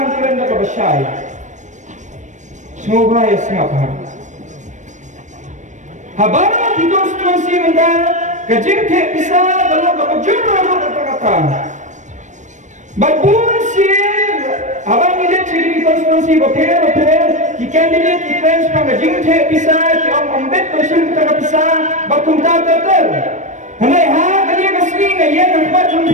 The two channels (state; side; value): late; left; 0.35 ms